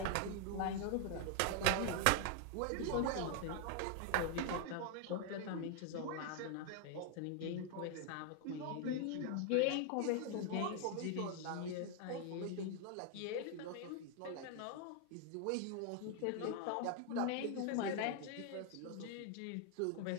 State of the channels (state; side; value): different; both; correlation 0.00